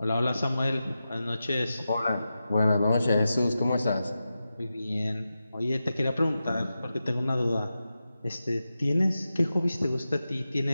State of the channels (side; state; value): both; inverted; correlation -0.91